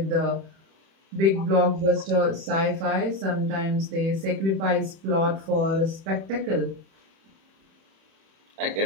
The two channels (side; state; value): left; late; 31 ms